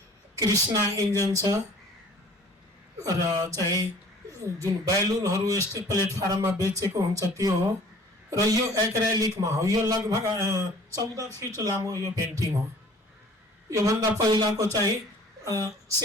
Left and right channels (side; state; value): both; normal; correlation 0.50